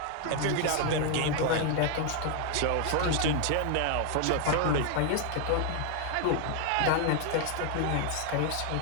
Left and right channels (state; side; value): different; both; correlation 0.00